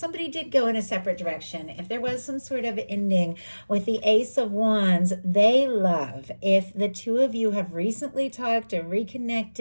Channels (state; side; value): inverted; both; correlation -1.00